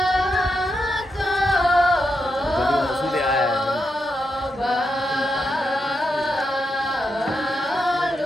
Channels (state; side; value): normal; both; correlation 0.84